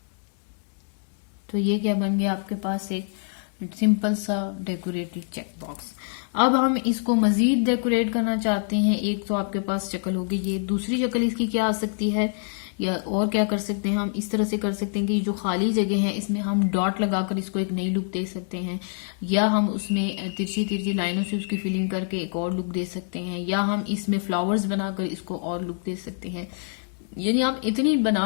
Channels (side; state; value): right; silent; 61 dB below the other